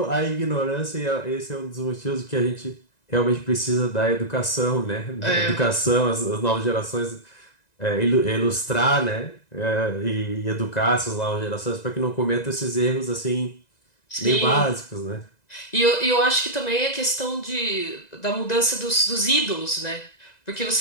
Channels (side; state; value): right; late; 1.9 ms